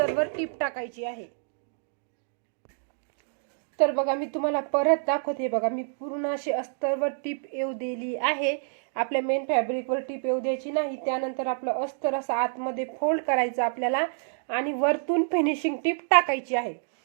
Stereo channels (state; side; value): silent; left; digital silence